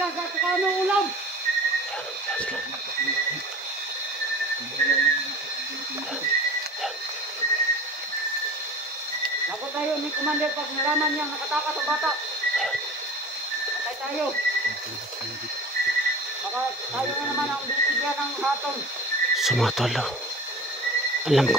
sa tukano ulam. Ako tayo ni Commander pag nalaman niyang nakatakas ang bata. Patay tayo. Baka tayo na naman ang bibigyan ng hatol. Sumatol, no? Alam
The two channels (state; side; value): normal; both; correlation 0.39